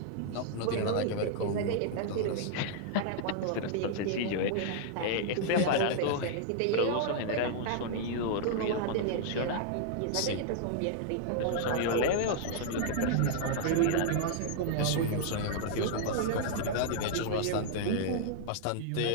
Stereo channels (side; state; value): both; different; correlation -0.01